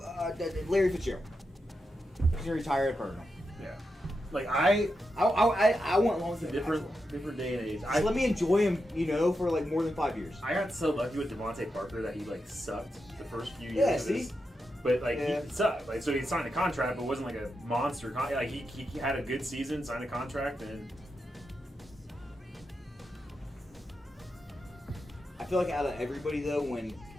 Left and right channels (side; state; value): both; normal; correlation 0.87